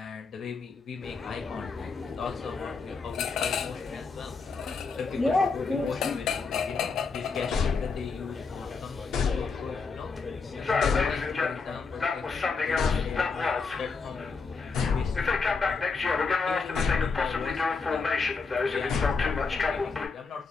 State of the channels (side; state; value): right; quieter; 4.7 dB